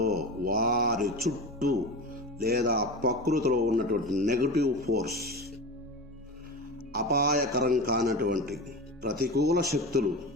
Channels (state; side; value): normal; both; correlation 0.27